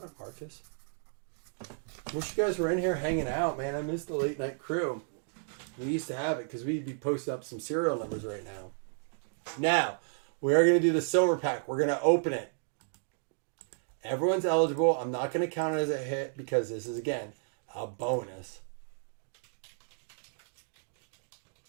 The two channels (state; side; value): silent; left; digital silence